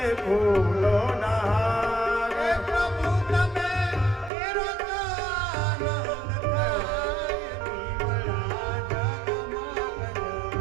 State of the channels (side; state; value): left; drops out; at 4.3 s